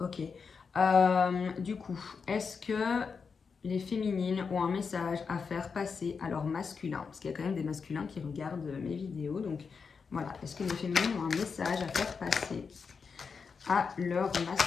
Du coup, est-ce que les féminines ont un message à faire passer à leur masculin? Parce qu'il y a quand même des masculins qui regardent mes vidéos. Donc, voilà. Est-ce que les féminines ont un message à faire passer à leur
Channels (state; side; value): quieter; right; 5.5 dB